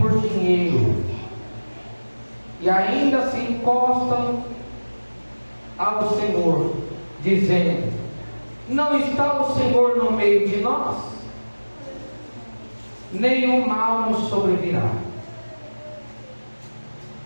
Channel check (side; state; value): both; inverted; correlation -1.00